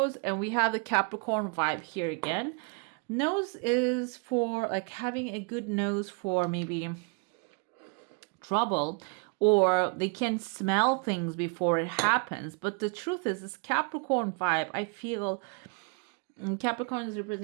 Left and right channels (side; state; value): left; quieter; 36.1 dB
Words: and we have the Capricorn vibe here again. Nose is for like having a good nose for maybe trouble, or they can smell things before it happens. But the truth is, this Capricorn vibe, I feel, Capricorn is